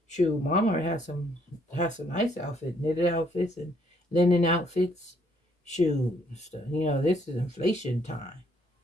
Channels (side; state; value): both; normal; correlation 0.68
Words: shoot, Walmart has some nice outfits, knitted outfits and linen outfits. Shoot, this is inflation time,